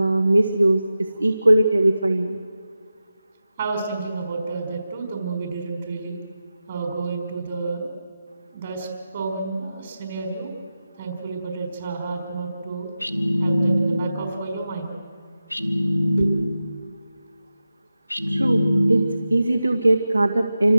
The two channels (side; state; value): both; inverted; correlation -0.92